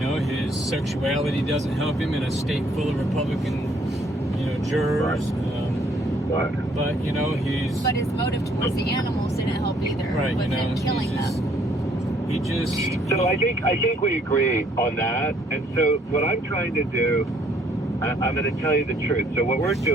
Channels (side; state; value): both; normal; correlation 0.64